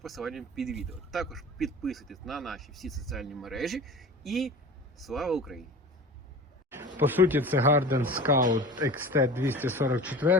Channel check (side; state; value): both; normal; correlation 0.36